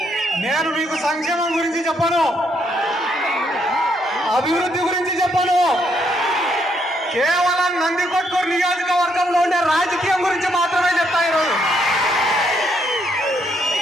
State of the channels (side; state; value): both; normal; correlation 0.74